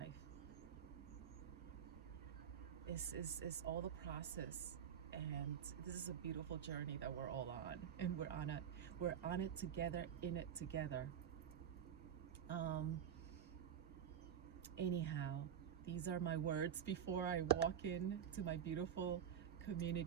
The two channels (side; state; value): left; quieter; 8.9 dB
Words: This is all the process, and this is a beautiful journey that we're all on, and we're on it together, in it together. Anyhow, these are my words before I walk in to my beautiful